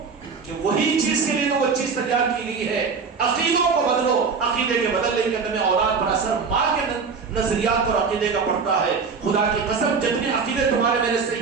کہ وہی چیز کے لیے تو وہ چیز تیار کی گئی ہے. عقیدوں کو بدلو, عقیدے کے بدلنے کے اندر میں اولاد پر اثر, نظریات اور عقیدے کا پڑھتا ہے. خدا کی قسم جتنے عقیدے تمہارے میرے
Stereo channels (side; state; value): left; quieter; 5.3 dB